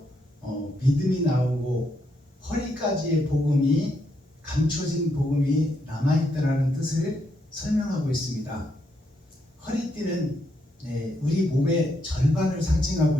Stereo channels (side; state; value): both; normal; correlation 0.78